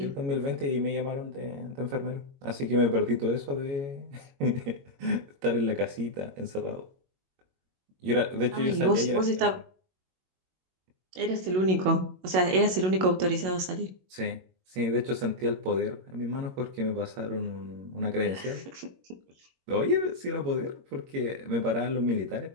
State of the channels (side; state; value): left; late; 22 ms